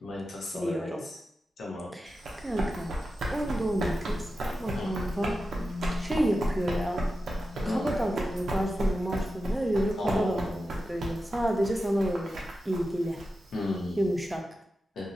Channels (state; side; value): normal; both; correlation 0.91